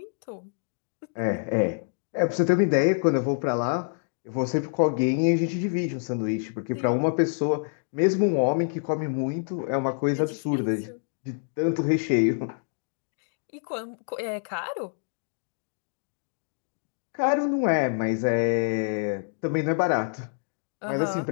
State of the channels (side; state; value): right; silent; digital silence